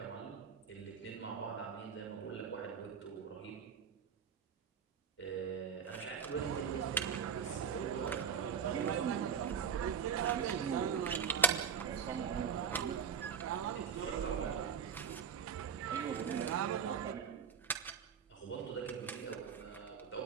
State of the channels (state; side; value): quieter; left; 7.0 dB